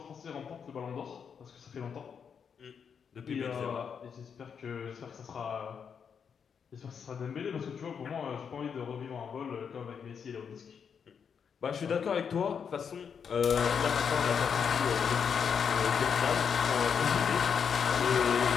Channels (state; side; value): quieter; right; 6.9 dB